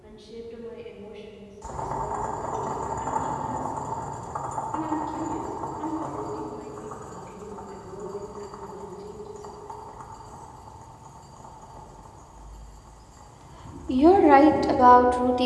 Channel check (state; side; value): identical; both; correlation 1.00